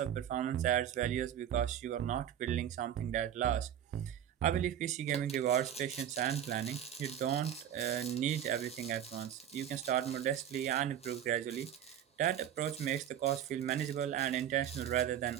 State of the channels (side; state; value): left; quieter; 10.2 dB